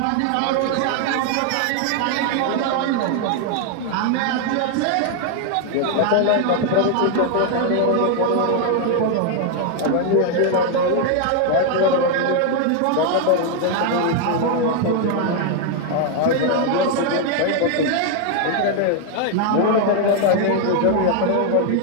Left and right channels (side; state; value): both; different; correlation 0.00